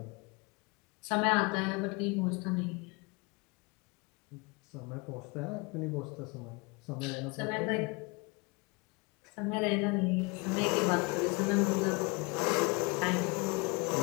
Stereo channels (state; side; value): quieter; right; 28.5 dB